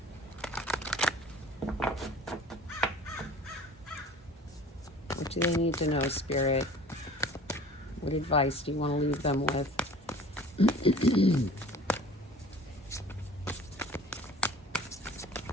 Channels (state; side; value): normal; both; correlation 0.46